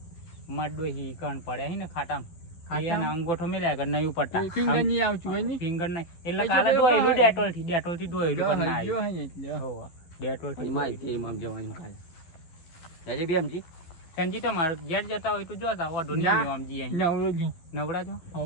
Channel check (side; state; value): right; late; 12 ms